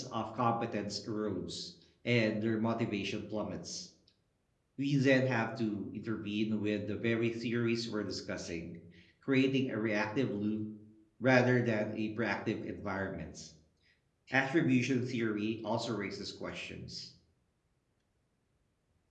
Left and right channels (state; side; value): identical; both; correlation 1.00